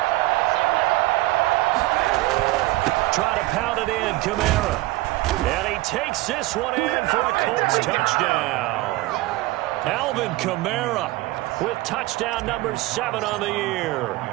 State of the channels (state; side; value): quieter; left; 19.3 dB